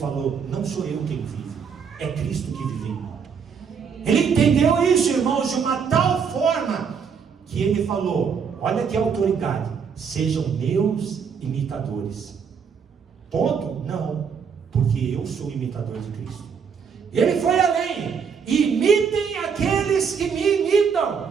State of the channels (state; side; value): quieter; left; 6.5 dB